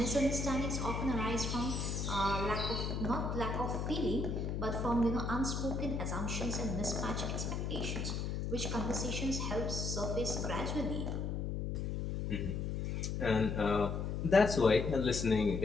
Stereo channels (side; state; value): left; noise; hum, 2 dB below the sound